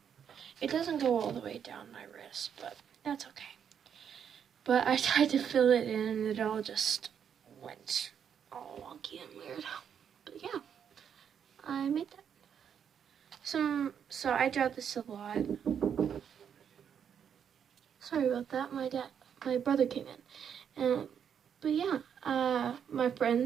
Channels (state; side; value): quieter; left; 8.1 dB